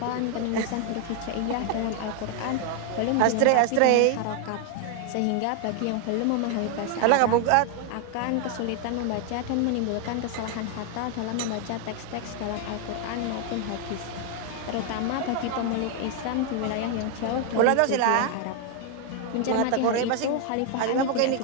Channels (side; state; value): both; different; correlation 0.01